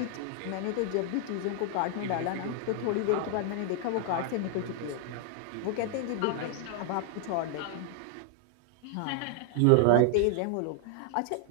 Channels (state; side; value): different; both; correlation 0.00